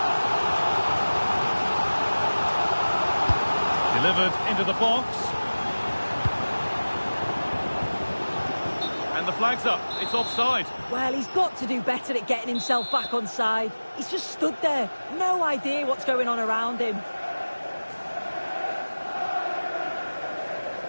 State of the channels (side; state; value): both; inverted; correlation -1.00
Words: Delivered into the box. And the flag's up. It's offside. Well, he's got to do better at getting himself back on side. He's just stood there. No idea what's going on around him.